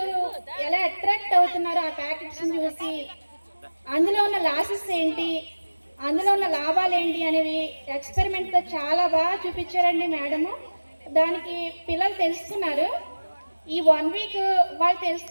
ఎలా అట్రాక్ట్ అవుతున్నారో ఆ ప్యాకెట్స్ని చూసి అందులో ఉన్న లాసెస్ ఏంటి, అందులో ఉన్న లాభాలు ఏంటి అనేవి ఎక్స్పెరిమెంట్తో చాలా బాగా చూపించారండి మేడము. దానికి పిల్లలు తెలుసుకున్నారు. ఈ 1 week వాళ్ళు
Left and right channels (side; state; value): both; inverted; correlation -1.00